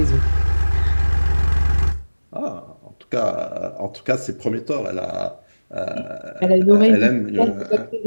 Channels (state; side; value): inverted; both; correlation -1.00